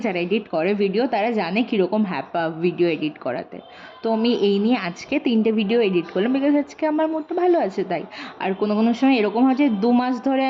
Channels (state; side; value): identical; both; correlation 1.00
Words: এডিট করে ভিডিও, তারা জানে কীরকম হ্যাপা ভিডিও এডিট করাতে। তো আমি এই নিয়ে আজকে 3টে ভিডিও এডিট করলাম, বিকজ আজকে আমার মুডটা ভালো আছে তাই। আর কোনো সময় এরকম হয় যে 2 মাস ধরে